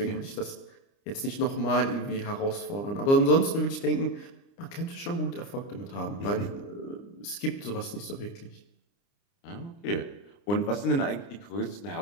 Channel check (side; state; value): right; late; 29 ms